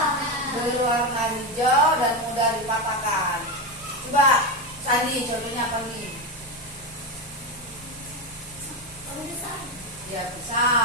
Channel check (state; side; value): normal; both; correlation 0.13